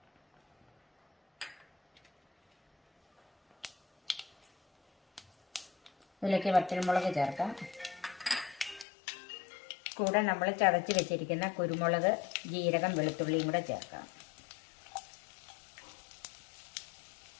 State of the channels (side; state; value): right; drops out; at 8.8 s